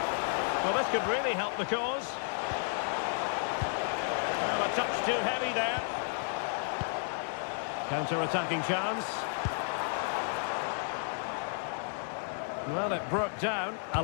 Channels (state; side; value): silent; right; digital silence